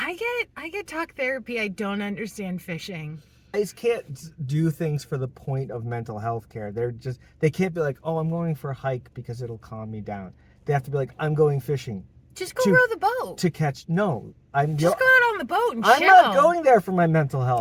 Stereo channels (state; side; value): identical; both; correlation 1.00